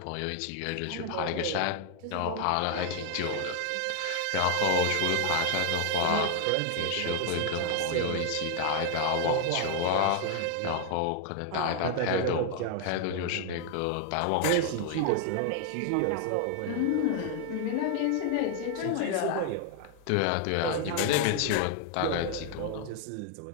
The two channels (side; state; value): both; different; correlation 0.00